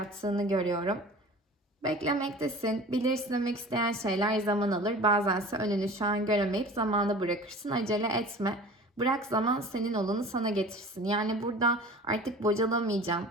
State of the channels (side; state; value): both; normal; correlation 0.41